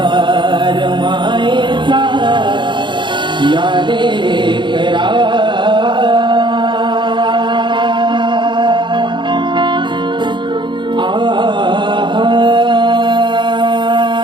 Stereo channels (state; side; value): late; left; 0.23 ms